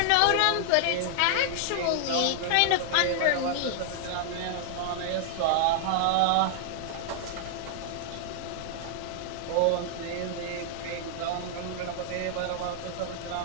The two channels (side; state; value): both; different; correlation 0.00